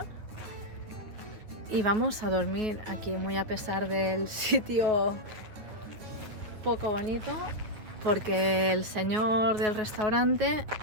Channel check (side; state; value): left; late; 9.4 ms